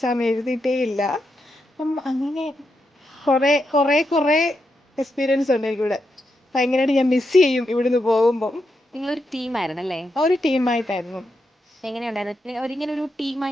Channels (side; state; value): both; normal; correlation 0.84